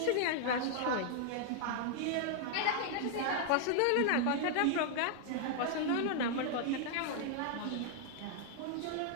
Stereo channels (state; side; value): different; both; correlation 0.00